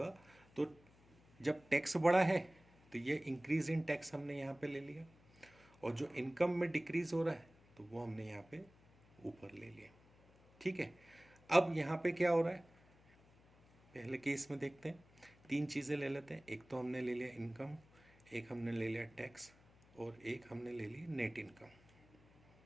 तो जब टैक्स बढ़ा है तो ये इंक्रीज इन टैक्स हमने यहाँ पे ले लिया, और जो इनकम में डिक्रीज हो रहा है तो वो हमने यहाँ पे ऊपर ले लिया। ठीक है, अब यहाँ पे क्या हो रहा है, पहले केस में देखते हैं, तीन चीज़ें ले लेते हैं। एक तो हमने ले लिया इनकम, एक हमने ले लिया टैक्स, और एक हमने ले ली नेट इनकम।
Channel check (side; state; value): left; noise; hum, 27 dB below the sound